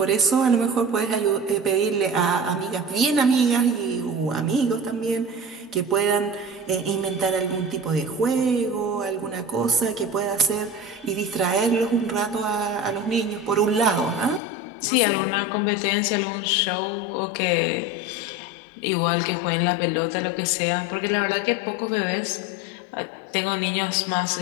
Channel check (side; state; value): right; drops out; at 14.4 s